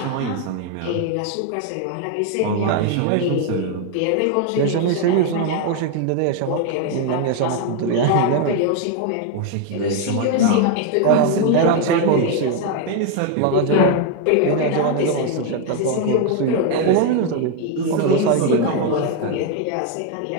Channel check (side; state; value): both; different; correlation 0.01